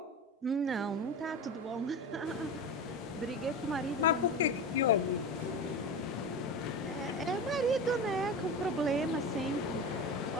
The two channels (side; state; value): both; normal; correlation 0.25